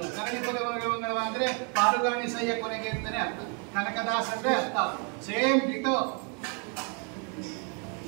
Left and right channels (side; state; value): left; quieter; 36.6 dB